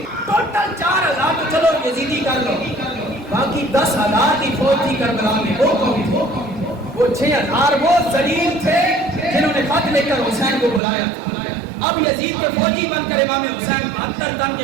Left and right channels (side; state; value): left; drops out; at 10.8 s